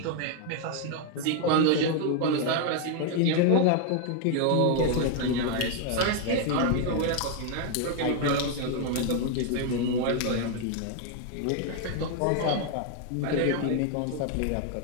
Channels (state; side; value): different; both; correlation 0.00